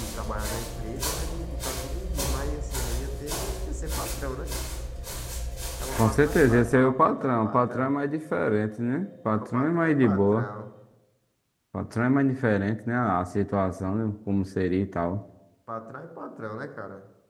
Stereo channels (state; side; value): identical; both; correlation 1.00